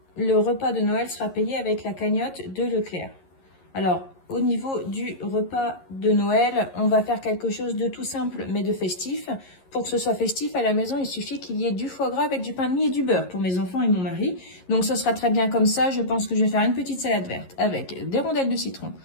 le repas de Noël sera payé avec la cagnotte de Leclerc. Alors, au niveau du repas de Noël, on va faire quelque chose de tout simple mais de festif. Pour que ce soit festif à la maison, il suffit qu'il y ait du foie gras avec du pain de mie et du beurre pour mes enfants et mon mari. Donc ce sera très bien comme ça. Je pense que je vais faire une petite salade verte avec des rondelles de citron,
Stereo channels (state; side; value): late; right; 11 ms